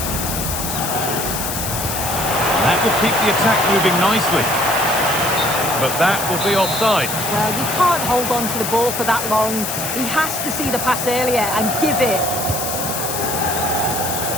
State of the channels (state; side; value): noise; left; hiss, 4 dB below the sound